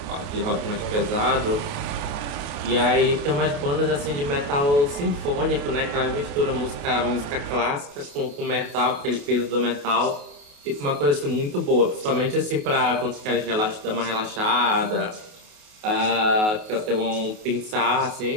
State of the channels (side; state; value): left; late; 28 ms